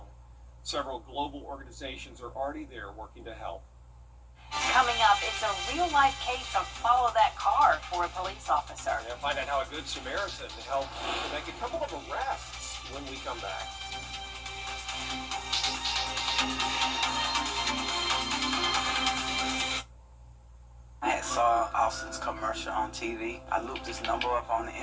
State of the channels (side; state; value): both; identical; correlation 1.00